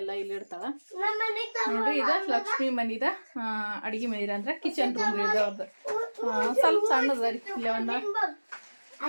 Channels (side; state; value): both; inverted; correlation -1.00